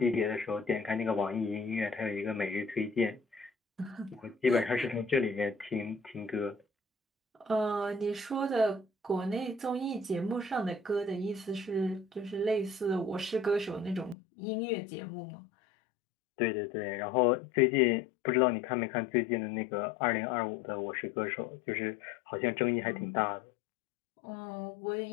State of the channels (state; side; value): drops out; right; at 14.2 s